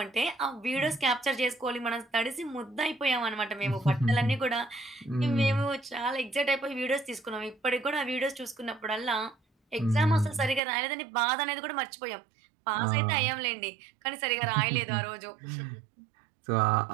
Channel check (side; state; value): left; drops out; at 10.6 s